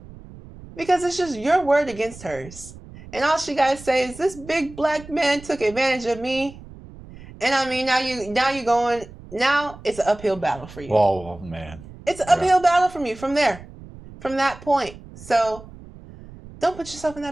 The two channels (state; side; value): noise; right; rumble, 18 dB below the sound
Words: because it's just your word against hers. And all she got to say is, this big black man took advantage of me. And I mean, now it's an uphill battle for you. Oh, man. It's an uphill battle from you from that point. So don't put yourself in